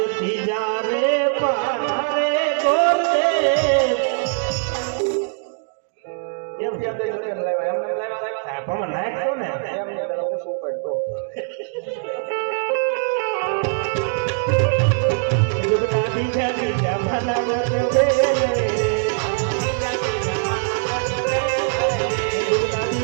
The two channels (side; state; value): left; silent; 64 dB below the other